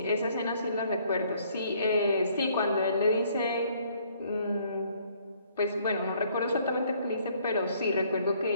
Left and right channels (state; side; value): inverted; both; correlation -0.63